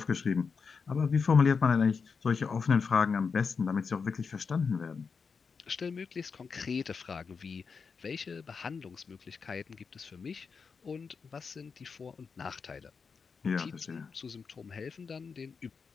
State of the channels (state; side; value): quieter; right; 5.4 dB